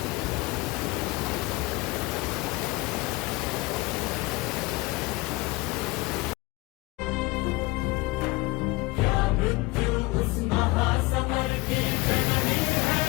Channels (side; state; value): right; quieter; 22.7 dB